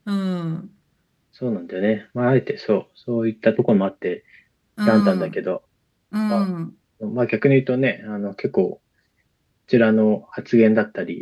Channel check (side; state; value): both; identical; correlation 1.00